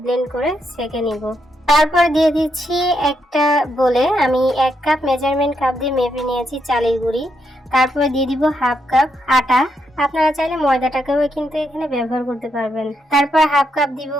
ব্লেন্ড করে সেঁকে নিব। তারপর দিয়ে দিচ্ছি একটা বলে আমি 1 কাপ মেজারমেন্ট কাপ দিয়ে মেপে নিয়েছি চালের গুঁড়ি। তারপরে দিয়ে দিব হাফ কাপ আটা, আপনারা চাইলে ময়দাটাকেও কিন্তু এখানে ব্যবহার করতে পারবেন। তারপর হাফ কাপ দিব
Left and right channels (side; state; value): both; normal; correlation 0.79